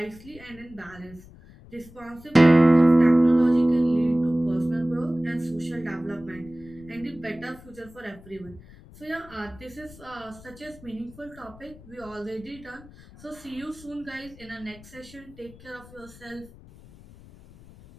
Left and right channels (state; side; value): noise; left; rumble, 21 dB below the sound